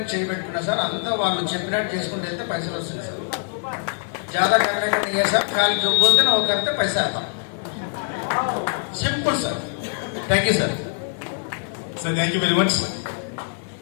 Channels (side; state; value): right; silent; 63 dB below the other